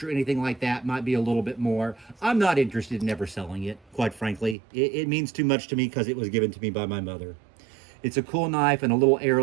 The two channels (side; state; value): left; drops out; at 4.5 s